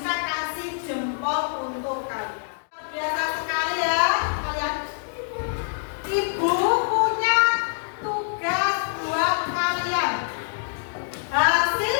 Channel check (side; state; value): right; silent; digital silence